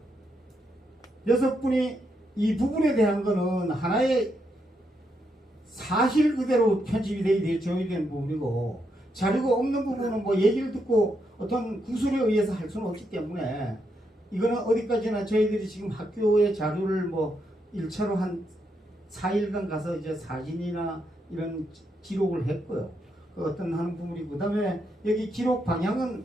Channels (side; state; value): both; normal; correlation 0.80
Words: 6분이 이 부분에 대한 거는 하나의 사실 그대로 편집이 되어야 되는 부분이고, 자료가 없는 부분은 뭐 얘기를 듣고 어떤 구술에 의해서 할 수는 없기 때문에, 이거는 어디까지나 저희들이 지금 학교의 자료를 뭐 1차로 한 4일간 가서 이제 사진이나 이런 기록을 했고요. 그 어떤 하는 부분이고, 그 다음에 여기 기록 방향은